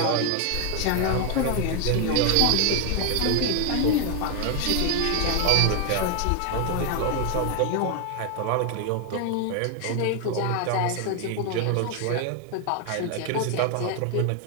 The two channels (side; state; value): both; different; correlation 0.01